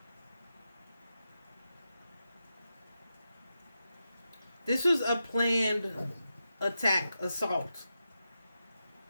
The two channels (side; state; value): both; inverted; correlation -0.89